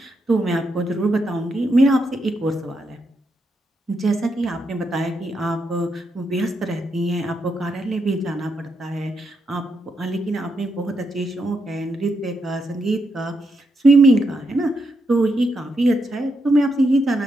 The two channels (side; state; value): both; normal; correlation 0.82